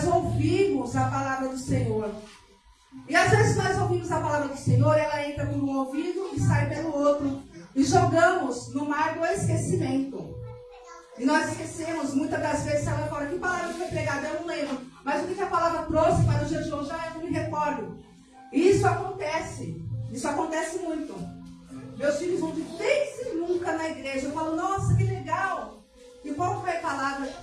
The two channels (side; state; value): both; identical; correlation 1.00